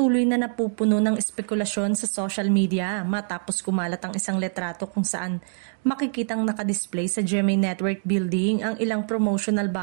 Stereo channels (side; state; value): left; silent; 62 dB below the other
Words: na napupuno ng espekulasyon sa social media matapos kumalat ang isang letrato kung saan makikitang nakadisplay sa GMA Network Building ang ilang promotional